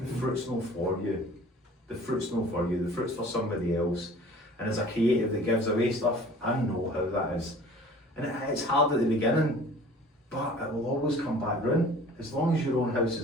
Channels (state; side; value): normal; both; correlation 0.47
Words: fruit's not for you. The fruit's not for you. The fruit's for somebody else. And as a creative that gives away stuff, I know how that is. And it's hard at the beginning, but it will always come back round. As long as your own house